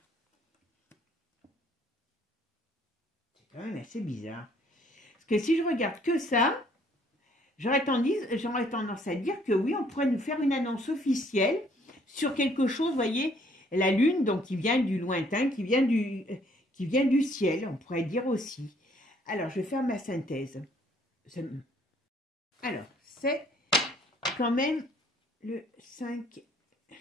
quand même assez bizarre. Parce que si je regarde que ça, j'aurais tendance à dire que oui, on pourrait nous faire une annonce officielle sur quelque chose, vous voyez, la lune, donc qui vient du lointain, qui vient du ciel, on pourrait dire aussi. Alors, je vais faire ma synthèse. Alors, c'est quand même le 5,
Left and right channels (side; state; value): both; normal; correlation 0.63